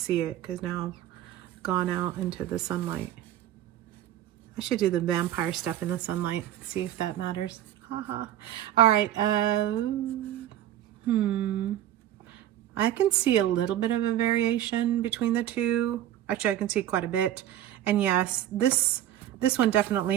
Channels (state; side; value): quieter; left; 12.1 dB